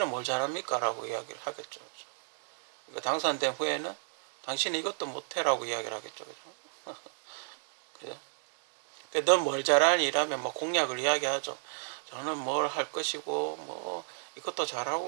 뭘 잘합니까? 라고 이야기를 하겠죠. 그러니까 당선된 후에는 당신은 이것도 못해라고 이야기를 하겠죠. 그죠? 그죠? 넌 뭘 잘하니? 이라면 뭐 공약을 이야기하죠. 저는 뭘 할 것이고, 뭐, 이것도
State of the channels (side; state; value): left; silent; digital silence